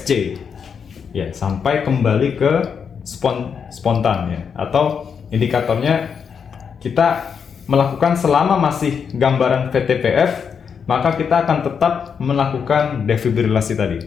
Ya, sampai kembali ke spontan ya. Atau indikatornya kita melakukan selama masih gambaran VTPF, maka kita akan tetap melakukan defibrilasi tadi.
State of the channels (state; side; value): quieter; right; 6.7 dB